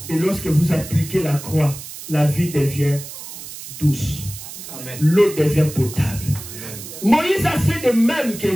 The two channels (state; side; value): noise; right; hiss, 12 dB below the sound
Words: Et lorsque vous appliquez la croix, la vie devient douce. L'eau devient potable. Moïse a fait de même